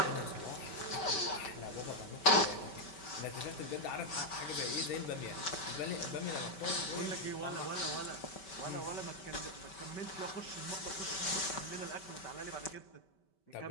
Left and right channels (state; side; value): late; right; 5.2 ms